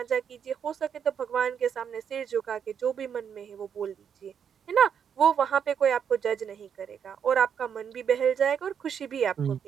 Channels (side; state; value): left; quieter; 7.8 dB